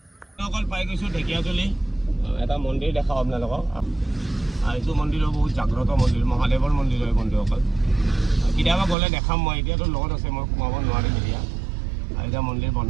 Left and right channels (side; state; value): left; drops out; at 9.0 s